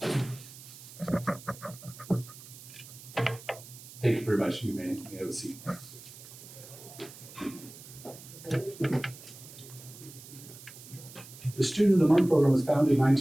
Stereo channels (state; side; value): noise; right; hiss, 17 dB below the sound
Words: Thank you very much. You may have a seat. The Student of the Month program was founded in